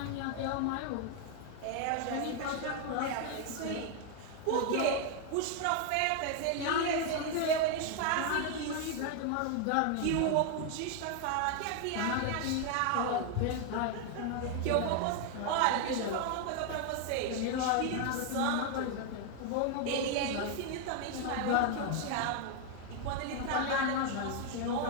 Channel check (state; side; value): different; both; correlation 0.00